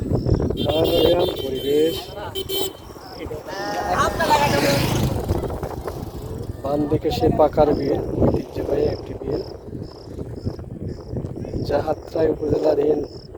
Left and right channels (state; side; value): identical; both; correlation 1.00